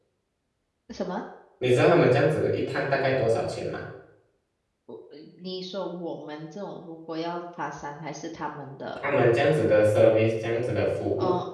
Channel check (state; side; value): identical; both; correlation 1.00